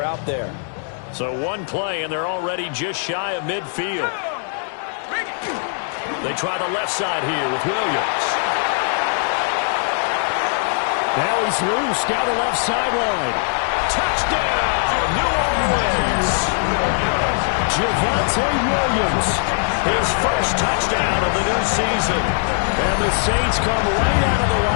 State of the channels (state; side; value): silent; right; 65 dB below the other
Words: out there. So one play, and they're already just shy of midfield. They try the left side here with Williams. Now he's loose down the left sideline. Touchdown, New Orleans. Javonte Williams, his first touchdown of the new season. And the Saints come right out of the